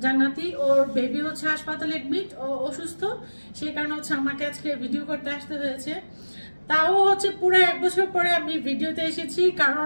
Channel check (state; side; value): inverted; both; correlation -1.00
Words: জান্নাতি, ওর বেবি হচ্ছে হাসপাতালে এডমিট, ও অসুস্থ। সেই কারণে হচ্ছে আমাকে আজকে ভিডিও করতে আসতে হয়েছে। তাও হচ্ছে পুরো 1 বছর পরে আমি ভিডিওতে এসেছি,